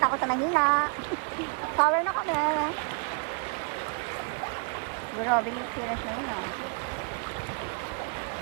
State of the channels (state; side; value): quieter; left; 34.9 dB